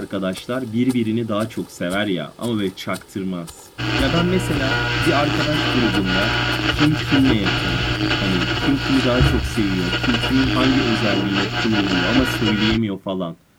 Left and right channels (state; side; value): identical; both; correlation 1.00